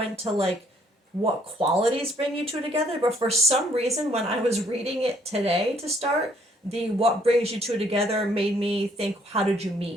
to like what qualities bring you two together, but for some reason when I was reading it today to start, the what brings you two together made me think, how did you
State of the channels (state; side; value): normal; both; correlation 0.65